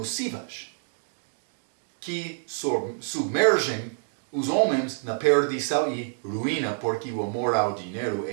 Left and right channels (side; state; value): left; silent; digital silence